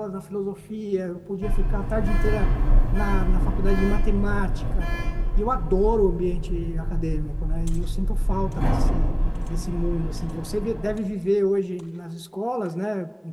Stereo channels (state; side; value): identical; both; correlation 1.00